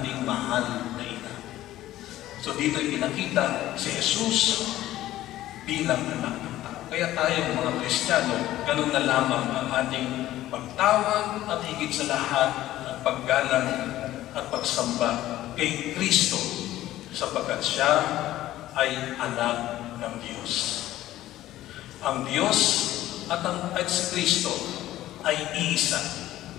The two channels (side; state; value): right; quieter; 14.5 dB